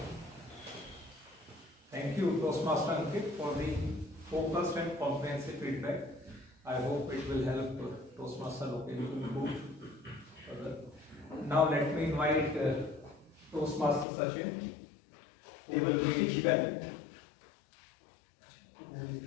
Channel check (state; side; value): drops out; right; at 14.1 s